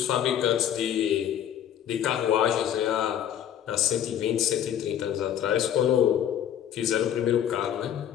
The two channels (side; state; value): right; quieter; 10.1 dB